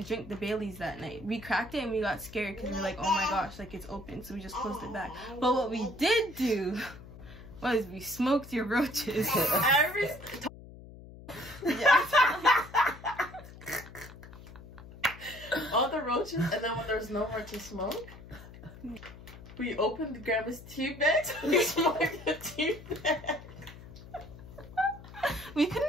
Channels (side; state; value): left; noise; hum, 17 dB below the sound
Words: drink the Bailey's that night. We cracked it and we got scared because we were like, oh my gosh, like it's open. So we just closed it back. But what we did do was we smoked your roaches. All the roaches, and then when there's no more to smoke, we opened Grandma's tea bag, so we smoked the tea bag. We couldn't